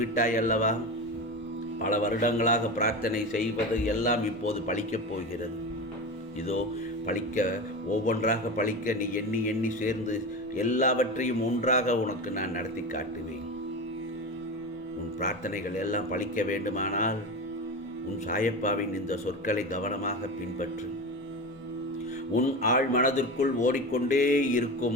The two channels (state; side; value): normal; both; correlation 0.24